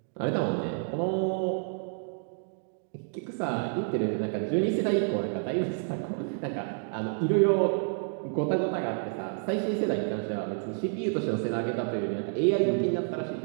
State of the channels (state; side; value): silent; left; 58 dB below the other